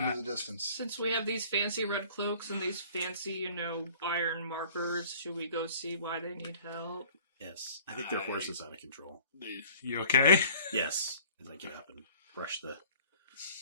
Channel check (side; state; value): both; inverted; correlation -0.50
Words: the distance. since we have these fancy red cloaks and these fancy, iron markers, should we go see why they need help? Yes. I think their horse is out of control. You okay? Yes. As I get up and brush